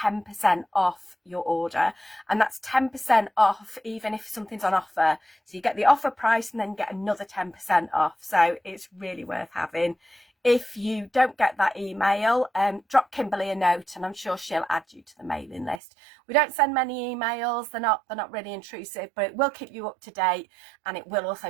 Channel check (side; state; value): left; drops out; at 15.8 s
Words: off your order, and that's 10% off even if something's on offer. So you get the offer price and then get another 10% off. So it's really worth having. If you don't get that email, drop Kimberly a note and I'm sure she'll add you to the mailing list. We don't send many emails, they're not really intrusive, but it will keep you up to date, and it will also